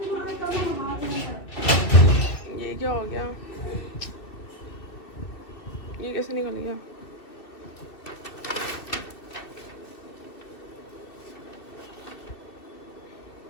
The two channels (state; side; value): late; right; 2.7 ms